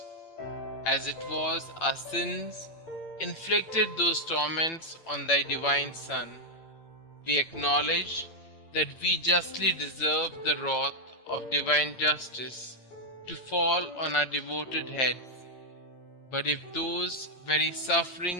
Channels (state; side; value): late; right; 8.8 ms